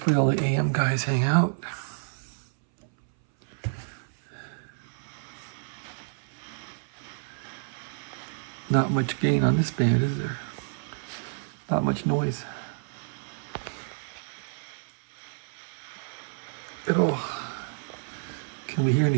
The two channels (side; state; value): left; silent; 58 dB below the other